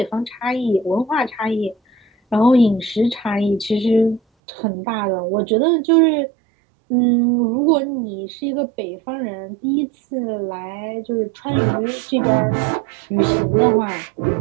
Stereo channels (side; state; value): left; drops out; at 4.2 s